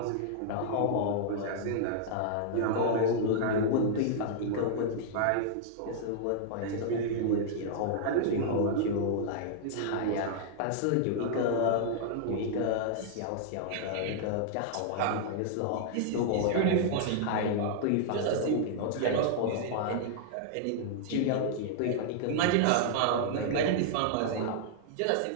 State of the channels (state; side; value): different; both; correlation -0.01